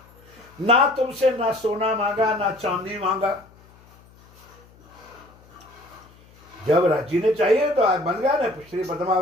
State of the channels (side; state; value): left; noise; hum, 26 dB below the sound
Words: ना तुमसे ना सोना मांगा ना चांदी मांगा। जब राज्य ने चाहिए तो आज बन गया ना। श्री